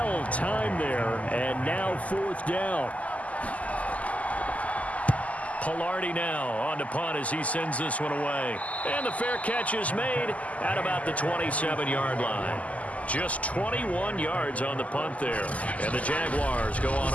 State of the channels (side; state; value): right; late; 0.071 ms